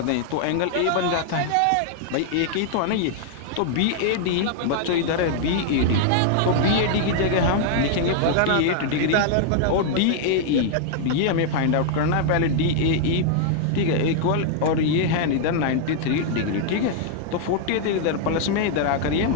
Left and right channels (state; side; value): different; both; correlation -0.01